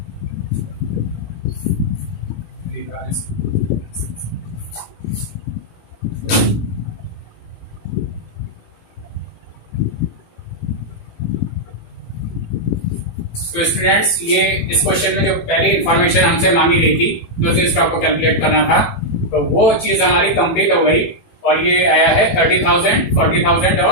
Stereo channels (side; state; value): right; late; 18 ms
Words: तो स्टूडेंट्स, ये इस क्वेश्चन में जो पहली इंफॉर्मेशन हमसे मांगी गई थी क्लोजिंग स्टॉक को कैलकुलेट करना था, तो वो चीज हमारी कंप्लीट हो गई, और ये आया है 30,000, 40,000